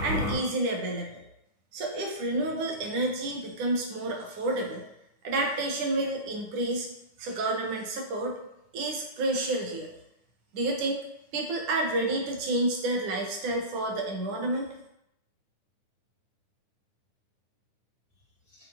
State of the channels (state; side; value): late; left; 9.9 ms